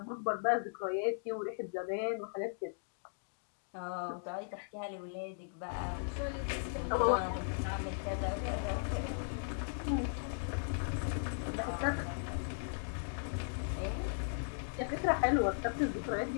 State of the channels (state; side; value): silent; right; digital silence